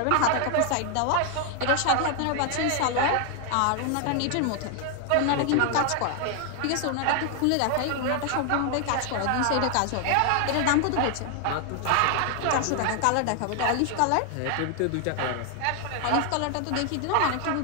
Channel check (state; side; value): different; both; correlation 0.00